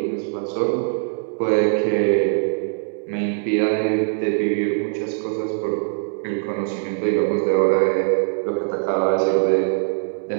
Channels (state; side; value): silent; left; 64 dB below the other